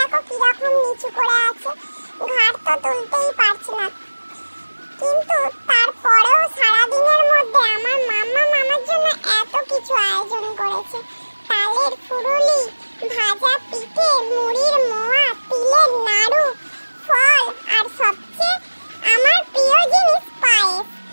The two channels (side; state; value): both; inverted; correlation -1.00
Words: কিরকম নিচু করে আছে, ঘাড় তো তুলতেই পারছে না। কিন্তু তারপরেও সারাদিনের মধ্যে আমার মাম্মাম আমার জন্য এত কিছু আয়োজন করেছে। তালের ফুরুলি, ভাজা পিঠে, মুড়ির মোয়া, তিলের নাড়ু, ফল আর সবচেয়ে আমার প্রিয় জিনিস পায়েস।